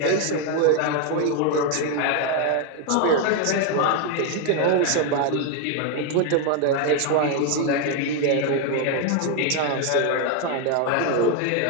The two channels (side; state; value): both; different; correlation 0.01